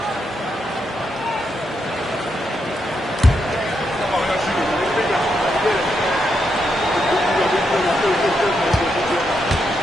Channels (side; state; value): both; normal; correlation 0.81